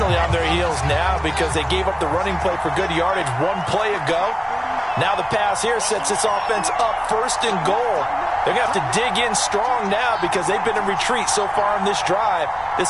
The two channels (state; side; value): identical; both; correlation 1.00